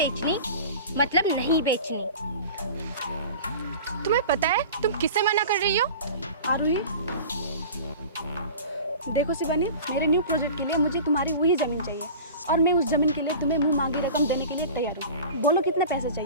मतलब नहीं बेचनी। तुम्हें पता है तुम किसे मना कर रही हो? आरुही, देखो शिवानी, मेरे न्यू प्रोजेक्ट के लिए मुझे तुम्हारी वही ज़मीन चाहिए और मैं उस ज़मीन के लिए तुम्हें मुंह मांगी रकम देने के लिए तैयार हूँ। बोलो कितने पैसे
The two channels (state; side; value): inverted; both; correlation -0.37